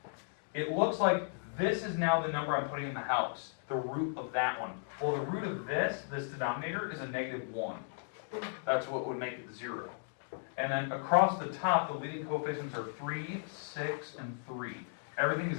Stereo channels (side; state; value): right; silent; digital silence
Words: it looks like this is now the number I'm putting in the house, the root of that one. Well, the root of this denominator, is a -1. That's what would make it 0. And then across the top, the leading coefficients are 3, 6, and 3. Everything is